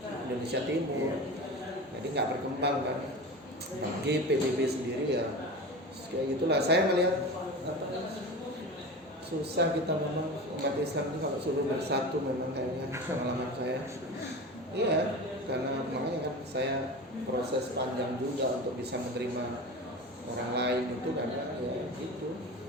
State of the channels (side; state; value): both; normal; correlation 0.30